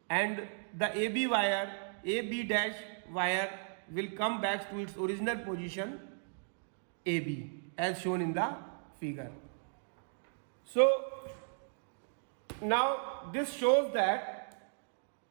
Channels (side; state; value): left; silent; digital silence